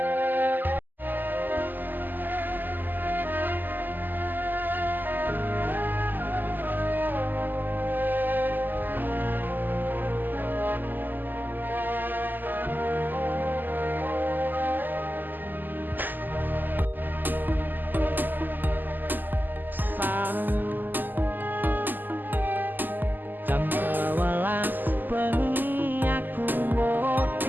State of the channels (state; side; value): late; left; 0.088 ms